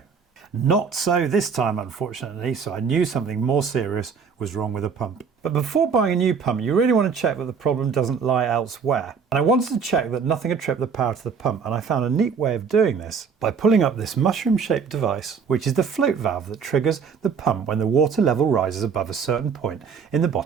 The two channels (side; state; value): left; quieter; 6.1 dB